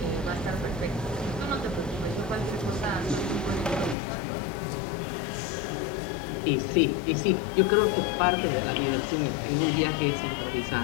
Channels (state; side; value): drops out; right; at 4.0 s